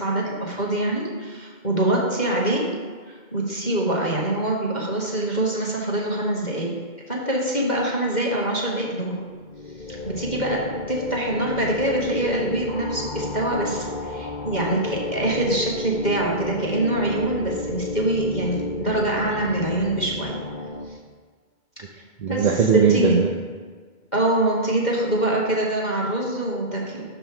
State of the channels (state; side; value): late; right; 2.1 ms